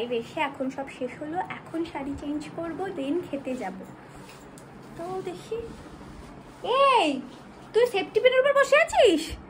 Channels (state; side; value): identical; both; correlation 1.00